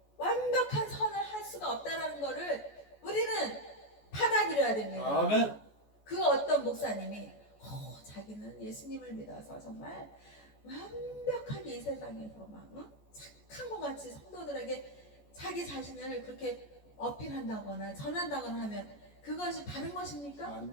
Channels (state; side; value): late; right; 14 ms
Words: 완벽한 선을 할 수가 없다라는 것을 우리는 받아들여야 됩니다. 아멘. 그 어떤 목사님이 자기는 예수님을 믿어서 정말 완벽하게 이 세상에서 착한 것 같이 성도들에게 자기 자신을 그렇게 어필한다거나 전한다거나 하면 그것이 바른 것입니까?